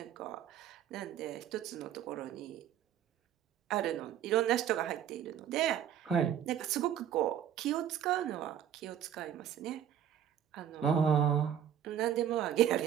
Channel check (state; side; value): quieter; left; 9.8 dB